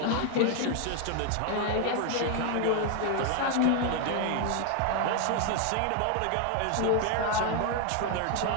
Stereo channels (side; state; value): both; different; correlation 0.01